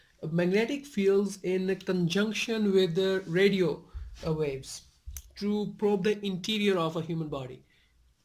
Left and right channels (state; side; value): identical; both; correlation 1.00